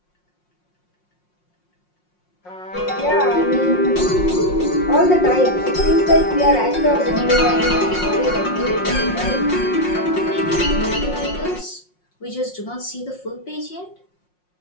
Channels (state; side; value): late; right; 5.6 ms